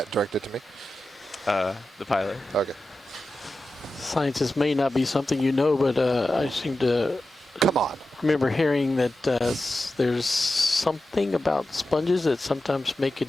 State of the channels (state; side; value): normal; both; correlation 0.93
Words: directed to me? The pilot. Okay. Sciences may not be something you know, but I seem to come on. Remember hearing that there's something about sponges that sometimes make it